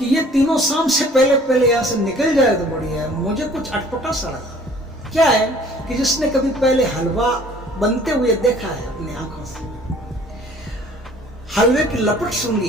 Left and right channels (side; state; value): both; normal; correlation 0.53